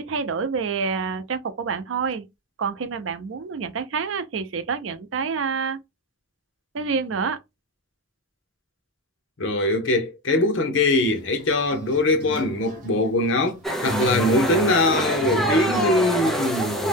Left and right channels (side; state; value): both; normal; correlation 0.17